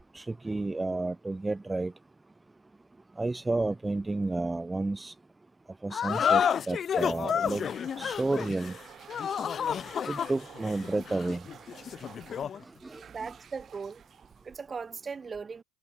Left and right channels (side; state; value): both; normal; correlation 0.85